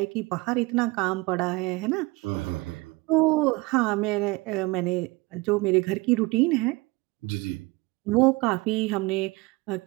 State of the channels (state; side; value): quieter; left; 23.7 dB